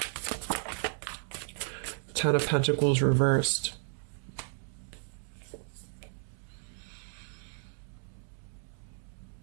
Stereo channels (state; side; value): silent; left; digital silence